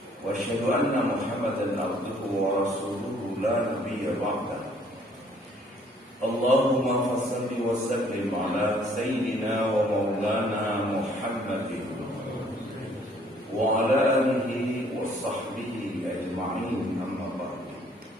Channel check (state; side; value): normal; both; correlation 0.61